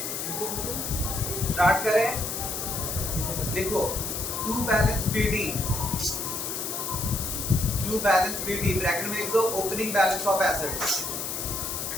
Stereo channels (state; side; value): noise; left; hiss, 4 dB below the sound